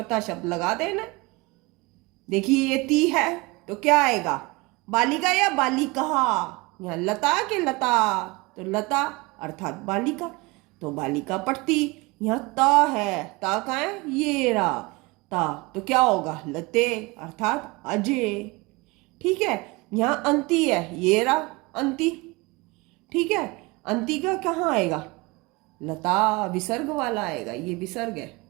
शब्द लगा देना। देखिए ये ती है तो क्या आएगा, बालिका या बालिका। यहाँ लता के लता, तो लता अर्थात बालिका, तो बालिका पढ़ती। यहाँ ता है, ता का है ये रहा ता, तो क्या होगा, लते अर्थात अजय। ठीक है, यहाँ अंती है, ये रहा अंती। ठीक है, अंती का कहाँ आएगा, लता विसर्ग वाला आएगा, ये विसर्ग है।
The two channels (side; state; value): left; quieter; 24.6 dB